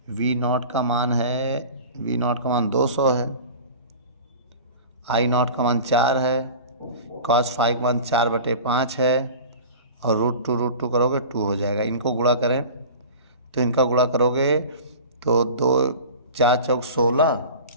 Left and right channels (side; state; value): both; inverted; correlation -0.37